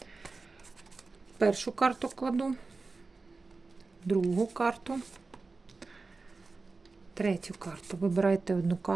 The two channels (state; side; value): quieter; left; 3.9 dB